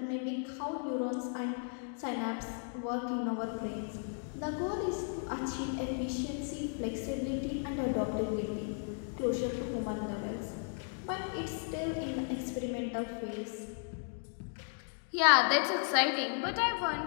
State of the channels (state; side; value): silent; right; 54 dB below the other